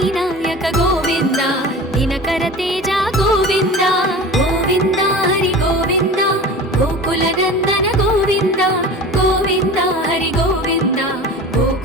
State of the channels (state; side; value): normal; both; correlation 0.36